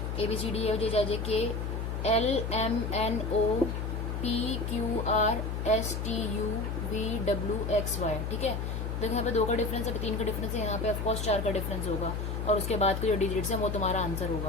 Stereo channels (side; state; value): left; noise; hum, 3 dB below the sound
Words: ABCDEFGHIJK LMNOPQRSTUVWXY, ठीक है। देखो यहाँ पे 2 का डिफरेंस है, 3 का डिफरेंस है, यहाँ पे ऑफकोर्स 4 का डिफरेंस होगा, और उसके बाद के जो डिजिट्स हैं वो तुम्हारा आंसर